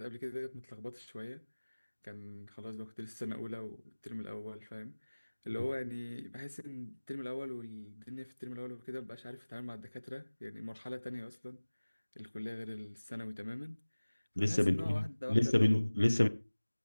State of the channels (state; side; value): inverted; both; correlation -1.00